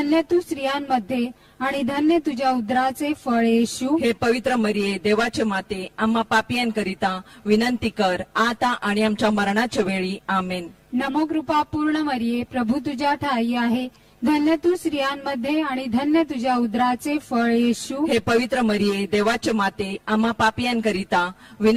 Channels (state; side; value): identical; both; correlation 1.00